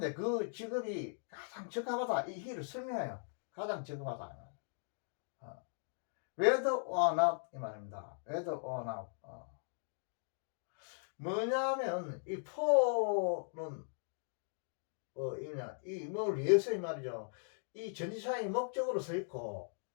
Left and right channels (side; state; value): right; silent; digital silence